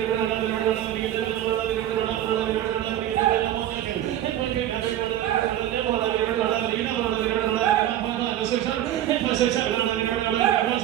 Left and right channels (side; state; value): left; quieter; 12.2 dB